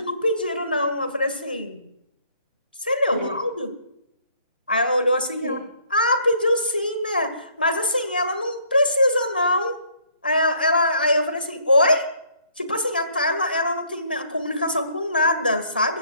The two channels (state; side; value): inverted; both; correlation -0.63